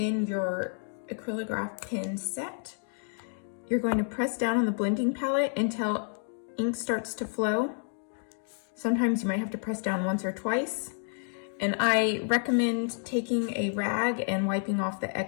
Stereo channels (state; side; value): silent; right; 57 dB below the other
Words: your acrylograph pen set. You're going to press down on the blending palette until ink starts to flow. Sometimes you might have to press down once or twice. And I recommend taking a rag and wiping off the